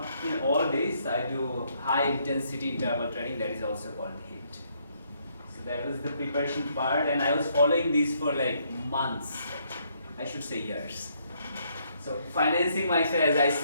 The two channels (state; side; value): inverted; both; correlation -0.71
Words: in all days, I do high intensity interval training, that is also called HIIT. So that was the preparation part, and I was following this for like months, I should say years. So financing myself, as I